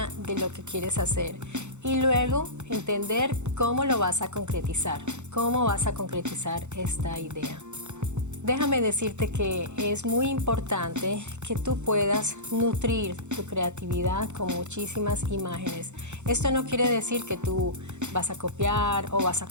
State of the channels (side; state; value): left; late; 0.83 ms